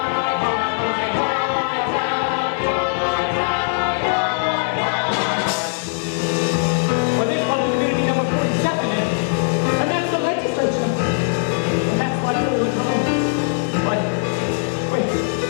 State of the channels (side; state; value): right; silent; 65 dB below the other